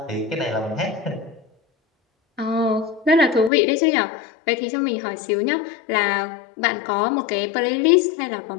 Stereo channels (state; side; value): drops out; right; at 3.5 s